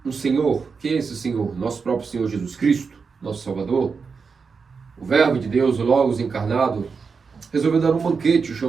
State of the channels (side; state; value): left; quieter; 5.2 dB